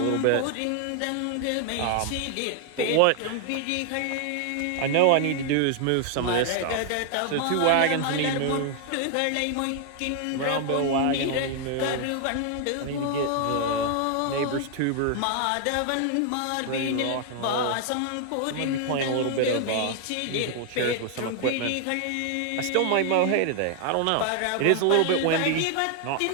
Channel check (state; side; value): different; both; correlation 0.00